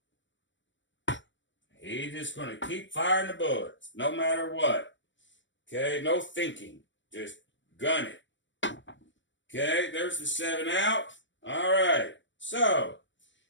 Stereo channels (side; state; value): right; late; 0.54 ms